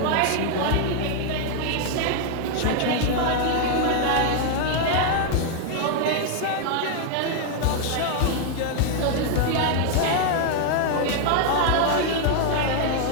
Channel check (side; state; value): both; different; correlation 0.00